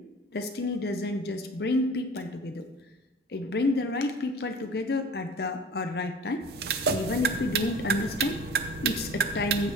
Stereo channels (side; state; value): both; normal; correlation 0.42